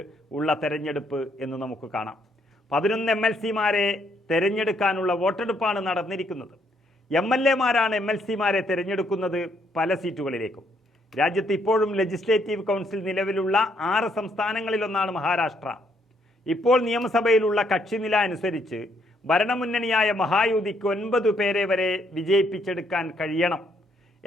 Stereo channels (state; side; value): normal; both; correlation 0.71